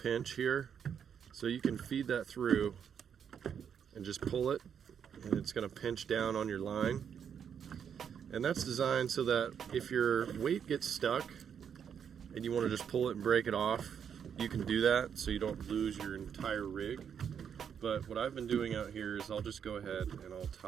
here, so you can feed that through and just pull it, and it's going to pinch down on your line. And that's designed so that if your weight gets stuck and you want to just pull it and break it off, you can do that so you don't lose your entire rig. But what I've been doing out here is I'll just go ahead and I'll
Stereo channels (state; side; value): quieter; left; 7.8 dB